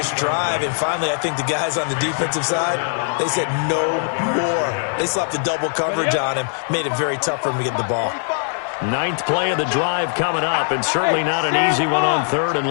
drive, and finally I think the guys on the defensive side, they said no more. They slapped the double coverage on him, made it very tough for him to get the ball. 9th play of the drive coming up, and certainly not an easy one on 3rd and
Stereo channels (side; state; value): right; silent; digital silence